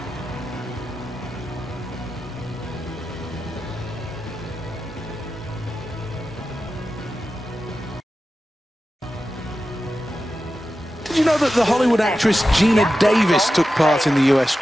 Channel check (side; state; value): both; normal; correlation 0.92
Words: Did you know that the Hollywood actress Gina Davis took part in the US